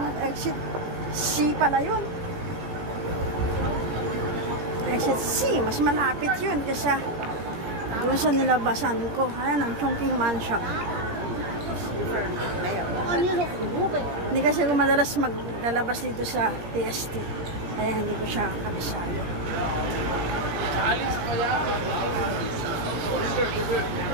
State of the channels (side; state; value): left; late; 17 ms